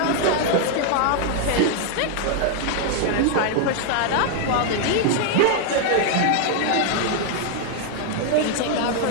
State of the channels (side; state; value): both; different; correlation 0.00